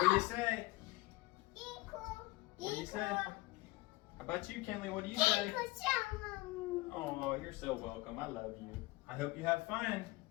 do you say? What do you say? How about you, Kenley? What do you say? Oh, you're so welcome. I love you. I hope you have fun.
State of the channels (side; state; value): right; quieter; 20.5 dB